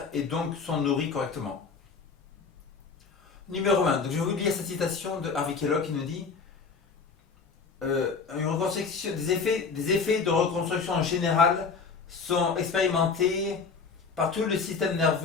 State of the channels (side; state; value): right; quieter; 5.0 dB